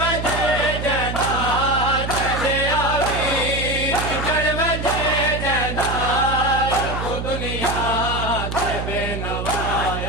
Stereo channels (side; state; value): right; noise; hum, 4 dB below the sound